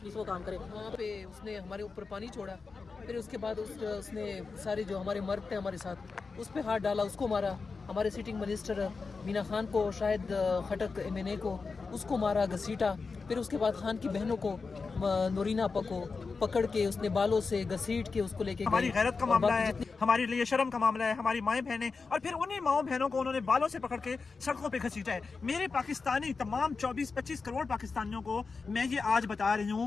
वो काम करे। वहाँ पे उसने हमारे ऊपर पानी छोड़ा, फिर उसके बाद उसने सारे जो हमारे मर्द थे हमारे साथ, उस पर हाथ डाला, उसको मारा। हमारे सिटिंग मिनिस्टर मीना खान को, शायद खटक MNA को, उसको मारा, घसीटा। फिर उसके बाद खान की बहनों को, नोरीना आपा को पकड़ के उसने बालों से घसीट के उसको लेके हमारी गैरत का मामला है, हमारे लिए शर्म का मामला है, हमारी माएँ बहनें, और फिर उन्हीं माओ बहनों को उन्होंने बालों से पकड़ के सड़कों पे घसीटा है। मेरे पाकिस्तानी तमाम 24-25 करोड़ पाकिस्तानियों को मैं ये आज बता रही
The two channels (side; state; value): right; quieter; 4.5 dB